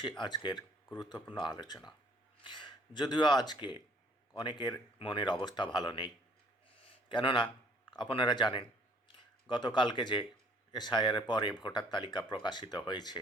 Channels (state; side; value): normal; both; correlation 0.59